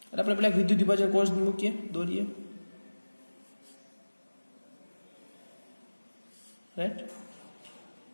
એટલે આપણે પેલા વિદ્યુત વિભાજન કોષ મૂકીએ, દોરીએ, રાઈટ?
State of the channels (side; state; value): both; inverted; correlation -1.00